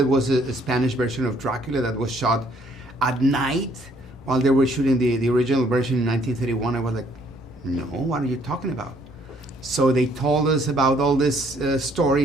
was a Spanish version of Dracula that was shot at night while they were shooting the original version in 1931? I was like, no, what are you talking about? So they told us about all this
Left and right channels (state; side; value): normal; both; correlation 0.64